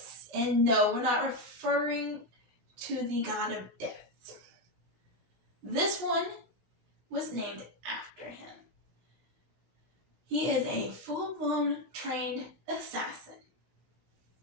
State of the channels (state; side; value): late; left; 16 ms